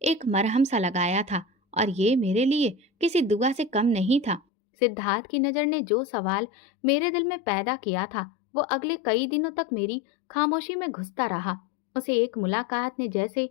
एक मरहम सा लगाया था, और ये मेरे लिए किसी दुआ से कम नहीं था। सिद्धार्थ की नजर ने जो सवाल मेरे दिल में पैदा किया था, वो अगले कई दिनों तक मेरी खामोशी में घुसता रहा। उसे एक मुलाकात ने जैसे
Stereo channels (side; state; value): right; drops out; at 4.4 s